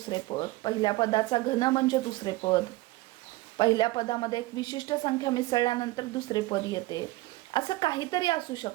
पद, पहिल्या पदाचा घन म्हणजे दुसरे पद, पहिल्या पदामध्ये एक विशिष्ट संख्या मिसळल्यानंतर दुसरे पद येते. असं काहीतरी असू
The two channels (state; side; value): quieter; left; 19.5 dB